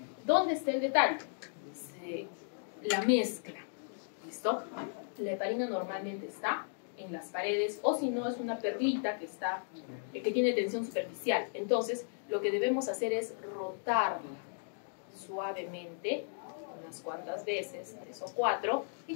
¿Dónde está el detalle? La mezcla. ¿Listo? La heparina normalmente está en las paredes o si no es una perlita que tiene tensión superficial. Entonces, lo que debemos hacer es rotarla suavemente unas cuantas veces, 3 o 4, y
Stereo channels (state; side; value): silent; right; digital silence